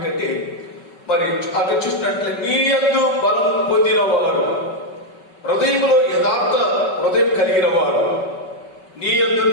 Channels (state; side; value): late; right; 5.3 ms